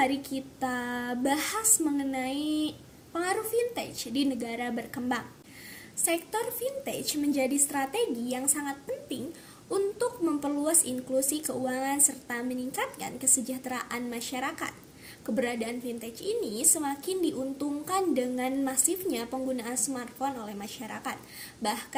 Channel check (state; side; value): identical; both; correlation 1.00